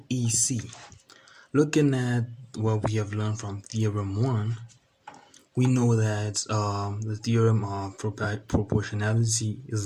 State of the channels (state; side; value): identical; both; correlation 1.00